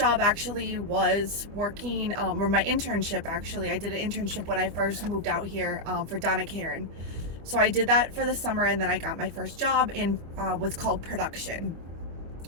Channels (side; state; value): left; late; 25 ms